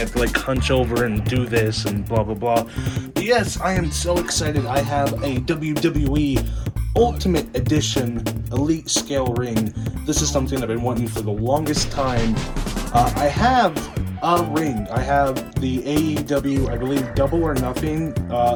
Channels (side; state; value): both; identical; correlation 1.00